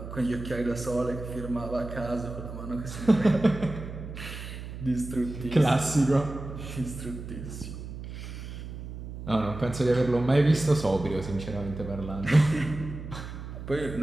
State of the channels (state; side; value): noise; right; hum, 10 dB below the sound